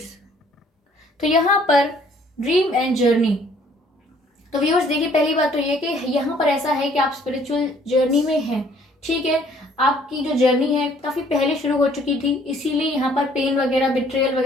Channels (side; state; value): both; normal; correlation 0.60